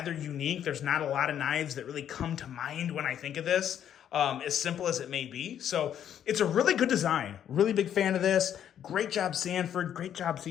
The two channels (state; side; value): quieter; right; 9.8 dB